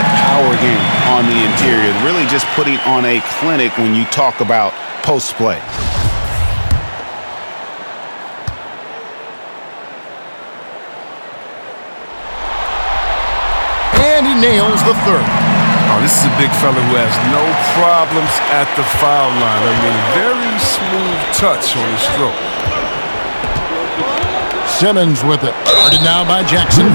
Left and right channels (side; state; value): both; inverted; correlation -1.00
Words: power game on the interior, really just putting on a clinic when you talk about post play. And he nails the third. Oh, this is a big fella who has no problems at the foul line. I mean, very smooth touch on his stroke. Simmons with it. Guarded now by Jackson.